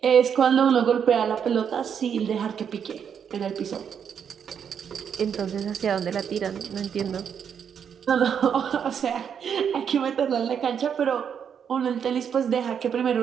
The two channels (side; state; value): left; quieter; 7.7 dB